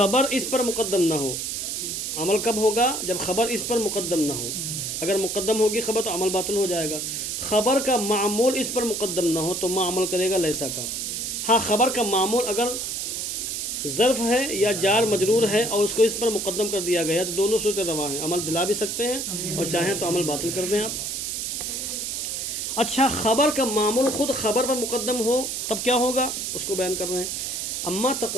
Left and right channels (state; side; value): noise; right; hiss, 3 dB below the sound